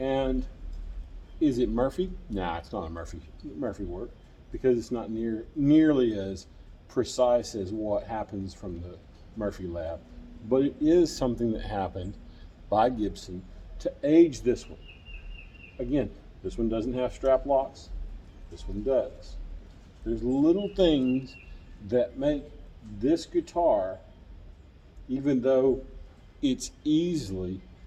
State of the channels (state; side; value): identical; both; correlation 1.00